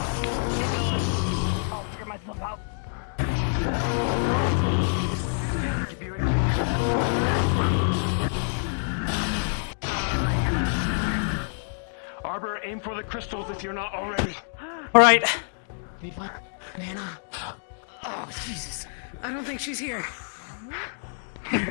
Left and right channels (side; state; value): right; silent; digital silence